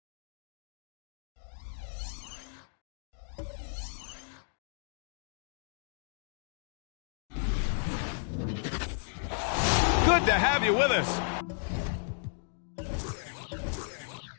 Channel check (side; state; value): right; silent; digital silence